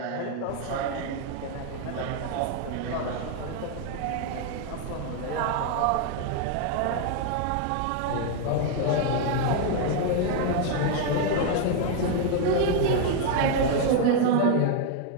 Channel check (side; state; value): both; different; correlation 0.00